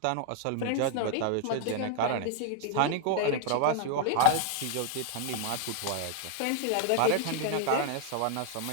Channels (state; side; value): different; both; correlation 0.00